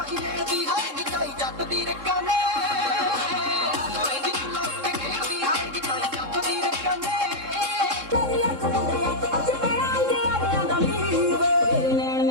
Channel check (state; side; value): late; left; 3.7 ms